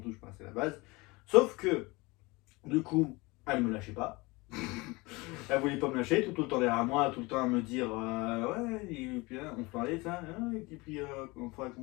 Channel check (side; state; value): right; quieter; 24.0 dB